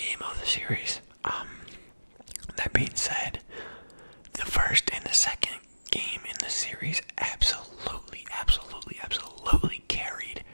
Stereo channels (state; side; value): inverted; both; correlation -1.00